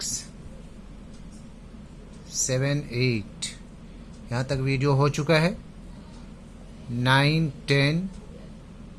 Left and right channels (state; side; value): identical; both; correlation 1.00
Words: 7, 8 यहाँ तक वीडियो हो चुका है। 9, 10,